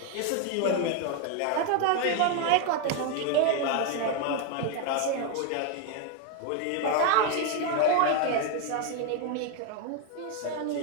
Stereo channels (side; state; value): both; different; correlation 0.01